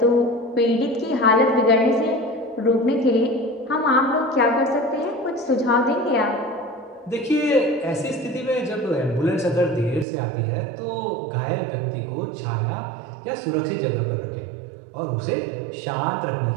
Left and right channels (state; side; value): drops out; left; at 10.1 s